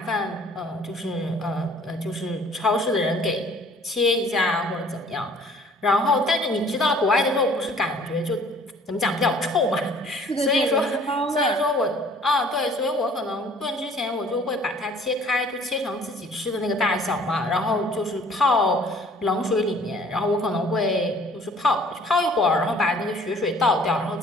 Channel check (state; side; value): normal; both; correlation 0.55